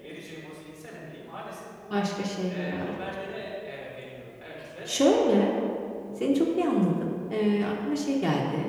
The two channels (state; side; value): identical; both; correlation 1.00